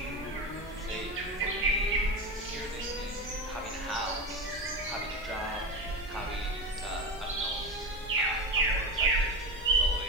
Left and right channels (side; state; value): both; normal; correlation 0.21